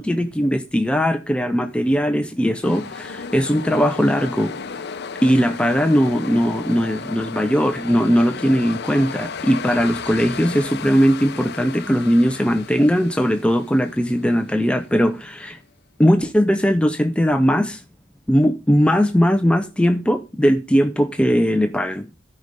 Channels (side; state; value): both; normal; correlation 0.93